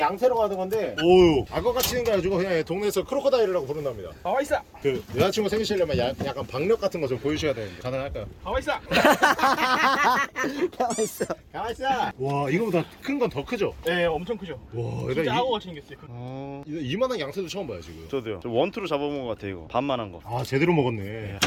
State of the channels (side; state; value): both; identical; correlation 1.00